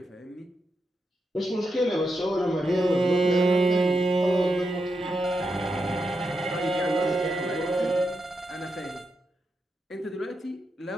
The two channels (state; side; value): normal; both; correlation 0.85